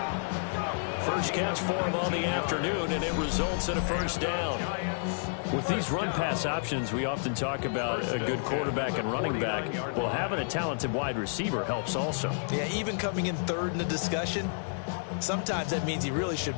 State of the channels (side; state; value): right; silent; 58 dB below the other